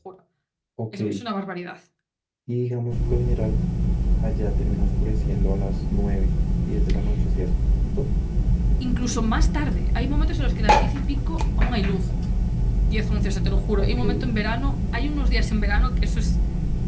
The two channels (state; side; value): identical; both; correlation 1.00